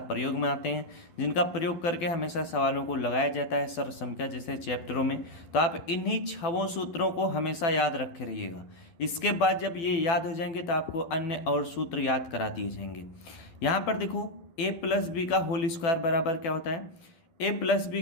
प्रयोग में आते हैं, जिनका प्रयोग करके हमेशा सवालों को लगाया जाता है सर्व संख्या जैसे चैप्टरों में। तो आप इन्हीं 6 सूत्रों को हमेशा याद रखे रहिएगा। इसके बाद जब ये याद हो जाएंगे तो आपको अन्य और सूत्र याद करा दिए जाएंगे। यहाँ पर देखो, ए प्लस बी का होल स्क्वायर बराबर क्या होता है? ए प्लस बी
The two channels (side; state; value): right; late; 12 ms